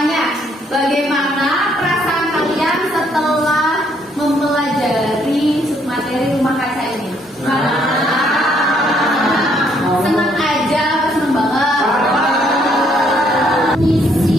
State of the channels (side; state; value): both; normal; correlation 0.68